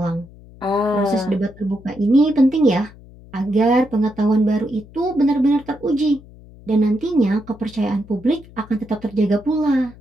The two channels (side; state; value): left; noise; hum, 21 dB below the sound